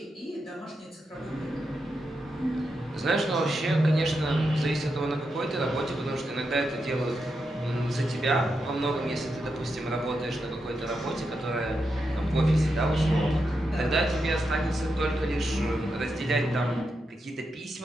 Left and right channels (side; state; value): both; normal; correlation 0.86